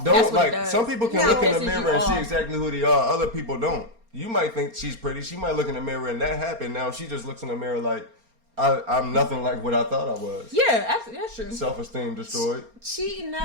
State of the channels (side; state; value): left; late; 4.3 ms